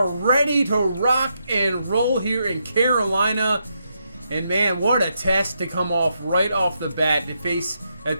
ready to rock and roll here in Carolina. And man, what a test to come off right off the bat to face a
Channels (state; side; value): inverted; both; correlation -0.81